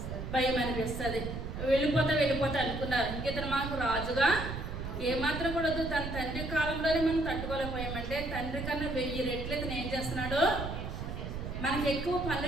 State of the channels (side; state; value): right; noise; rumble, 6 dB below the sound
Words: భయం అనిపిస్తుంది. వెళ్ళిపోతా అనుకున్నారు. ఇతను మాకు రాజుగా ఏమాత్రం కూడా వద్దు, తన తండ్రి కాలంలోనే మనం తట్టుకోలేకపోయామంటే తండ్రి కన్నా 1000 రెట్లు ఇతను ఏం చేస్తున్నాడు, మనకి ఎక్కువ